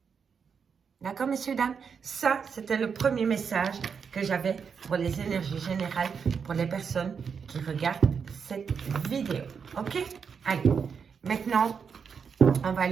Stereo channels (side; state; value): left; quieter; 6.3 dB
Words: D'accord, messieurs, dames? Ça, c'était le premier message que j'avais pour les énergies générales, pour les personnes qui regardent cette vidéo. OK? Allez, maintenant, on va